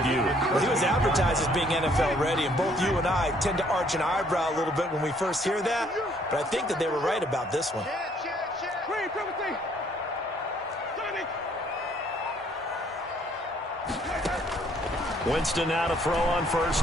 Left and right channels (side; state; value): both; normal; correlation 0.64